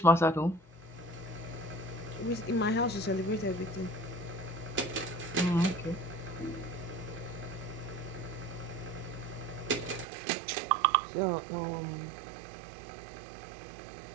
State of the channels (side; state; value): left; drops out; at 10.1 s